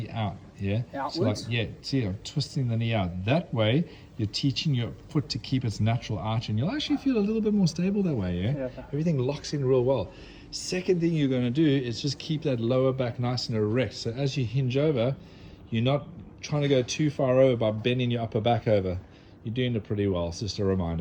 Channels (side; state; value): both; identical; correlation 1.00